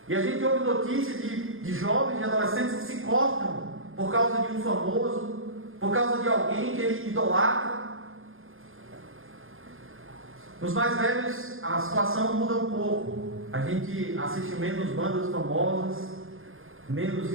E a gente ouve notícia de jovens, de adolescentes que se cortam por causa de um famoso, por causa de alguém que ele idolatra. Nos mais velhos, a situação muda um pouco. A gente assiste menos bandas famosas, menos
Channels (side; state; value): left; late; 0.60 ms